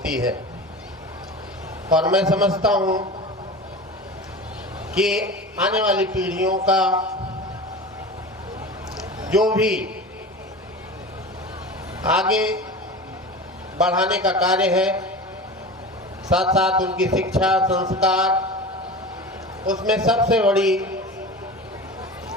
है। और मैं समझता हूँ कि आने वाली पीढ़ियों का जो भी आगे बढ़ाने का कार्य है, साथ साथ उनकी शिक्षा संस्कार, उसमें सबसे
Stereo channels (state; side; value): normal; both; correlation 0.32